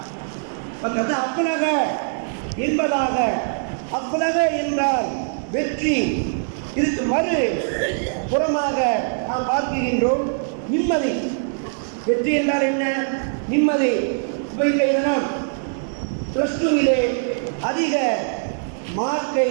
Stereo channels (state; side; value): silent; left; digital silence